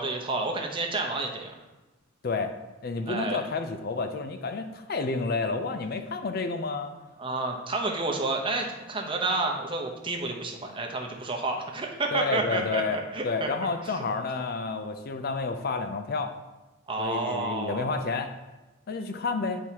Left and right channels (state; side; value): normal; both; correlation -0.02